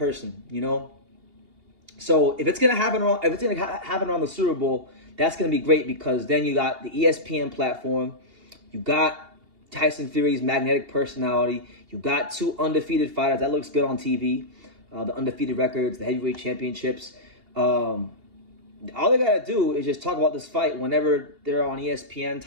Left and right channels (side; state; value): left; late; 2.8 ms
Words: So if it's gonna happen on the Super Bowl, that's gonna be great, because then you got the ESPN platform, you got Tyson Fury's magnetic personality, you got 2 undefeated fighters. That looks good on TV. The undefeated records, the heavyweight championships. All they gotta do is just talk about this fight whenever they're on ESPN